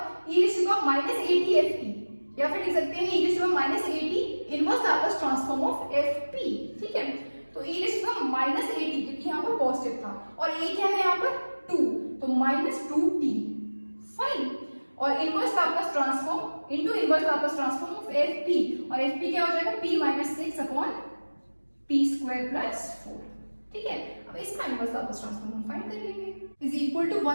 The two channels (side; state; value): both; inverted; correlation -1.00